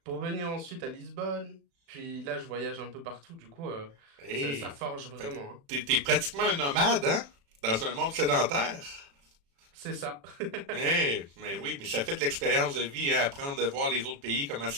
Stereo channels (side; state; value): left; late; 36 ms